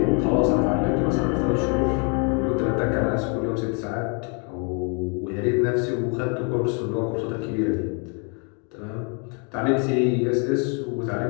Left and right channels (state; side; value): quieter; right; 37.6 dB